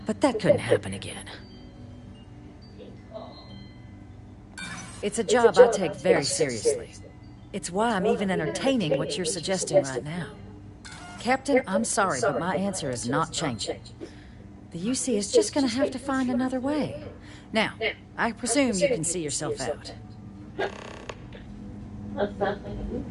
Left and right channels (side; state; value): both; identical; correlation 1.00